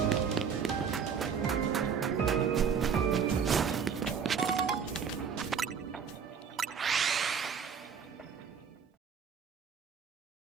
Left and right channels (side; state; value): left; quieter; 6.7 dB